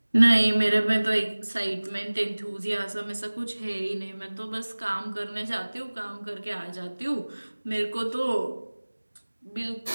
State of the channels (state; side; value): inverted; both; correlation -1.00